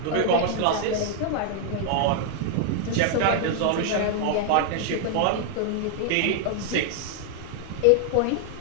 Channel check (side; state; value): both; different; correlation 0.00